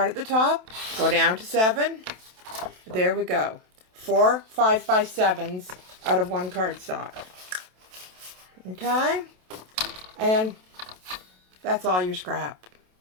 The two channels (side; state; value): left; late; 27 ms